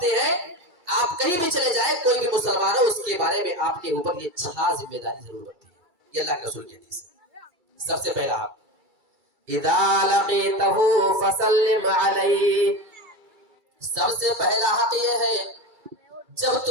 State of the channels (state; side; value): late; left; 2.3 ms